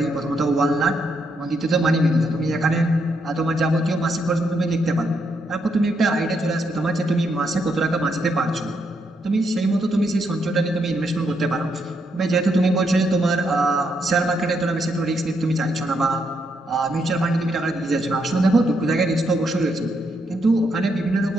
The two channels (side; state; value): both; normal; correlation 0.78